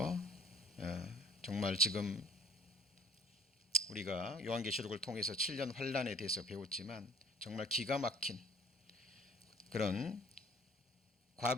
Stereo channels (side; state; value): both; normal; correlation 0.52